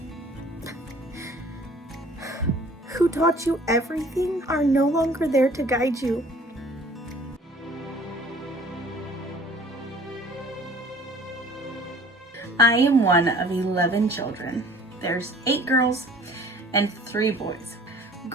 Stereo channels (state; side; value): normal; both; correlation 0.51